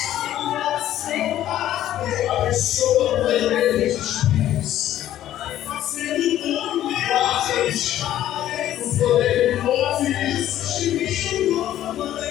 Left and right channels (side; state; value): right; quieter; 12.5 dB